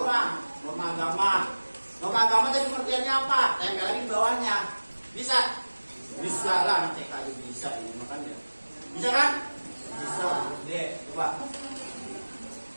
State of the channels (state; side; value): inverted; both; correlation -1.00